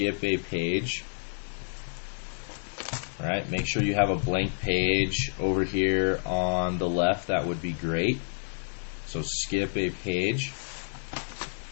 a page. All right, make sure you have a blank page over here on the left. That would be great. So skip a page.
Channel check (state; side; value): silent; right; 58 dB below the other